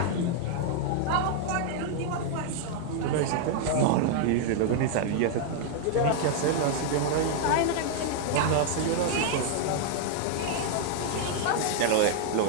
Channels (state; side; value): different; both; correlation 0.00